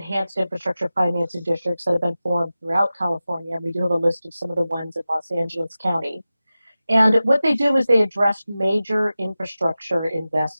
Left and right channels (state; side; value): inverted; both; correlation -0.95